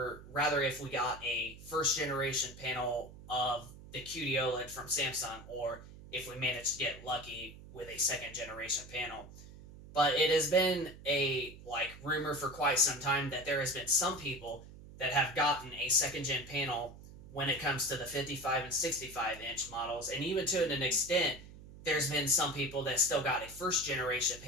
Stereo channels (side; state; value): right; noise; hum, 17 dB below the sound